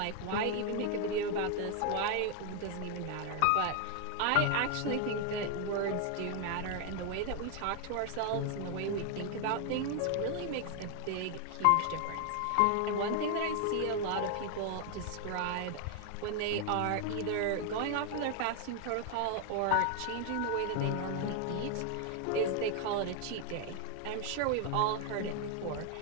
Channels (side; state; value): both; different; correlation 0.00